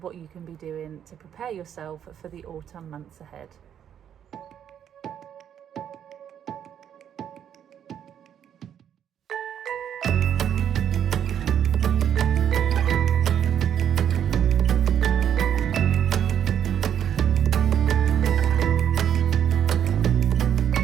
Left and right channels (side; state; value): left; quieter; 9.3 dB